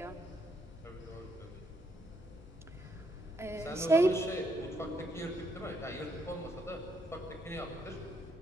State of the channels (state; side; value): normal; both; correlation 0.75